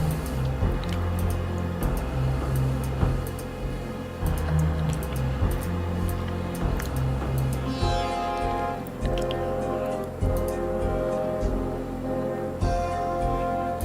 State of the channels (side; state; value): both; identical; correlation 1.00